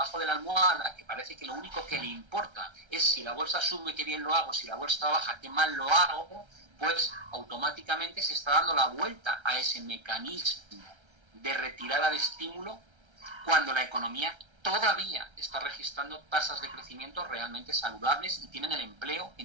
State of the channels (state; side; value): late; left; 1.3 ms